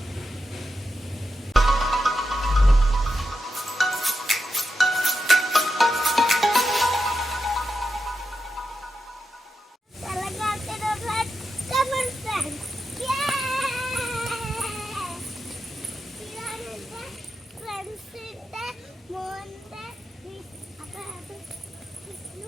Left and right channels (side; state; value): both; normal; correlation 0.88